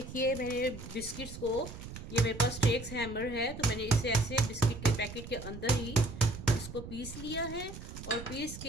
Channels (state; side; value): noise; right; rumble, 11 dB below the sound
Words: मेरे बिस्किट्स को, ये मेरे पास स्टेक्स हैमर है, तो मैंने इसे ऐसे बिस्किट के पैकेट के अंदर ही इसको पीस लिया है। और पीस